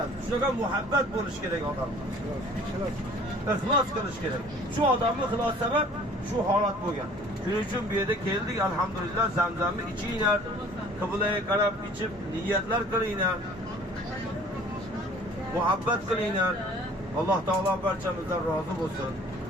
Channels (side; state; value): both; normal; correlation 0.51